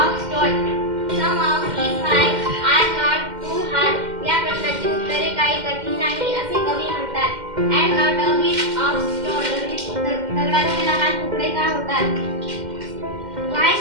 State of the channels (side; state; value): left; late; 2.1 ms